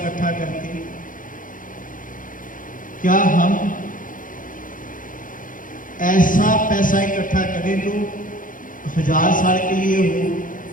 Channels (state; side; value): late; right; 0.39 ms